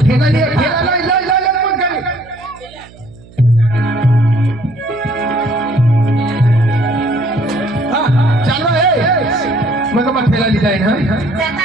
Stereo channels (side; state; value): right; noise; hum, 23 dB below the sound